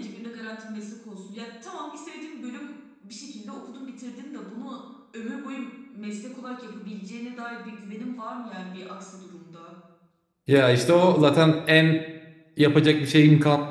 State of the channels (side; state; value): both; identical; correlation 1.00